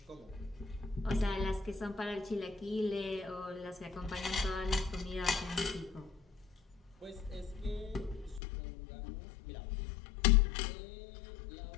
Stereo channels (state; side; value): drops out; right; at 8.4 s